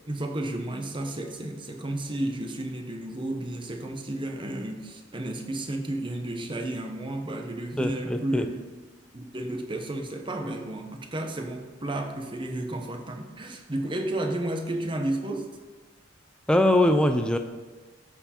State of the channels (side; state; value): both; normal; correlation 0.81